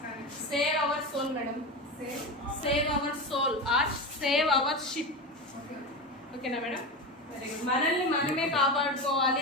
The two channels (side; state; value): both; normal; correlation 0.22